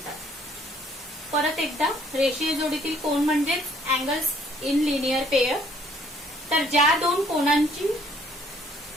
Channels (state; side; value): normal; both; correlation 0.62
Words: परत एकदा, रेषीय जोडीतील कोन म्हणजेच अँगल्स इन लिनियर पेयर. तर ज्या दोन कोनांची